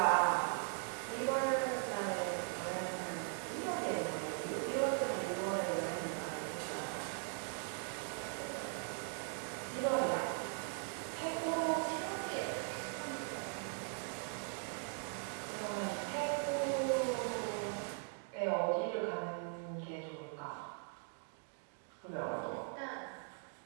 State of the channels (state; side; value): silent; left; 51 dB below the other